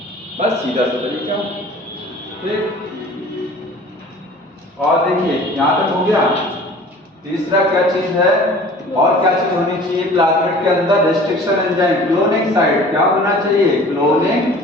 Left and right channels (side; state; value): both; normal; correlation 0.46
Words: बस सीधा सा तरीका, ठीक। और देखिए यहाँ तक हो गया। तीसरा क्या चीज है, और क्या चीज होनी चाहिए प्लाज्मिड के अंदर? रेस्ट्रिक्शन एंजाइम, क्लोनिंग साइट क्या होना चाहिए? Cloning